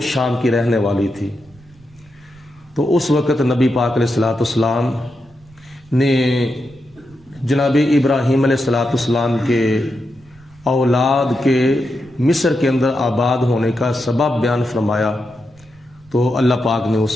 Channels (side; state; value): right; noise; rumble, 27 dB below the sound